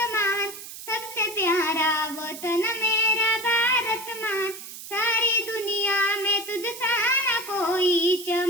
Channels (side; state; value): right; noise; hiss, 12 dB below the sound